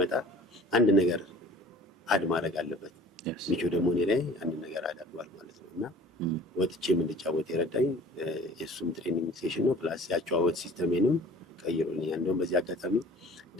አንድ ነገር አድ ማድረግ አለበት። ሚቾ ደግሞ እኔ ላይ አንድ ነገር አዳርጓል ማለት ነው። እና ወጥቼም እንድጫወት የረዳኝ የእሱም ትሬኒንግ ሴሽን ነው። ፕላስ ያጨዋወት ሲስተሜንም ቀይሮልኛል። እንደውም በዚህ አጋጣሚ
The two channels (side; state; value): both; normal; correlation 0.47